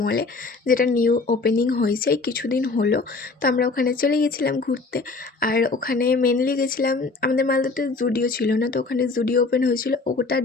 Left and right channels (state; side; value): quieter; right; 3.8 dB